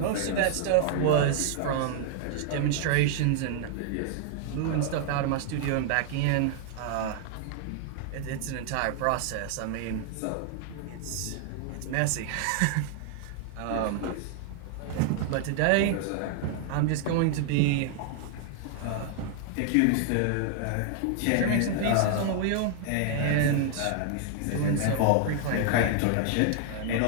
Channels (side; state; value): both; different; correlation 0.00